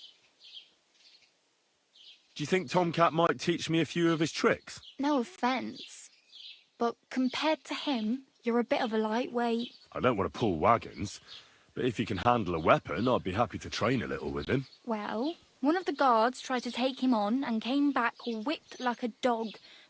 Do you think Tomcat might teach me a few of his tricks? No offence, but compared to him, you're a bit of a lightweight. I don't want to pull wagons, but if he can handle a weapon, I'd be happy to train a little with him. Well, one of the guards tried to take him on and came back whipped like a dog,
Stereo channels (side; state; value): both; identical; correlation 1.00